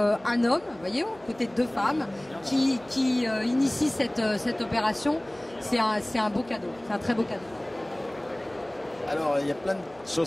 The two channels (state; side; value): noise; right; hum, 26 dB below the sound